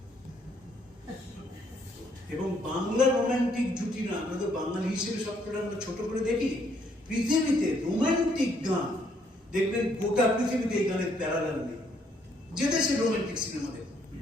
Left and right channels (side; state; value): both; normal; correlation 0.69